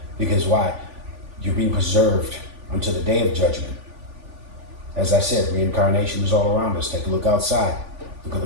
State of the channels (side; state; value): left; late; 3.5 ms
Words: Because why? You're being preserved until the day of judgment. As I said, reincarnation is all around us. Take a look outside. Look at